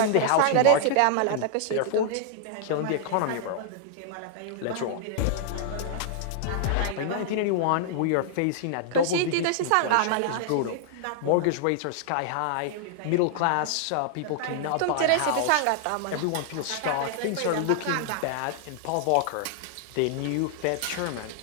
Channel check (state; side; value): different; both; correlation -0.01